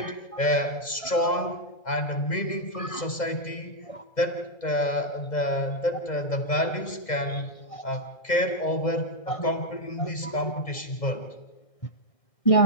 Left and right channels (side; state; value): right; late; 2.0 ms